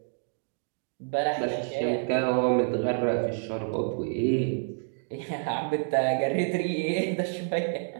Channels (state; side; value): silent; left; 59 dB below the other